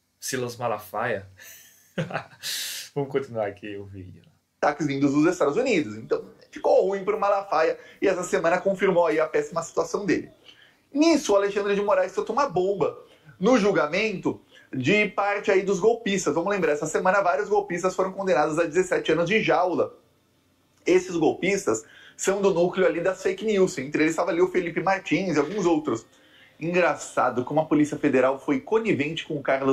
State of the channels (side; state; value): both; identical; correlation 1.00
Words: Silas Malafaia. Vamos continuar aqui o vídeo. Ataques vindos dos Estados Unidos. Então ficou ruim para o Malafaia e essa semana confirmou aí a péssima situação dele. Nisso, o Alexandre de Moraes soltou uma bomba no julgamento de parte aí dos golpistas. Vamos lembrar, essa semana vários golpistas foram condenados a 17 anos de jaula. Esses golpistas são do núcleo ali das fake news. Entre eles estava ali o Felipe Martins e alguns outros. Engraçado como a Polícia Federal foi conivente com o